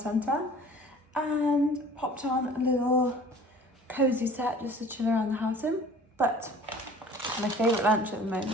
and popped on a little cozy set just to chill around the house in. But my favourite lunch at the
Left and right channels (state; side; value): normal; both; correlation 0.47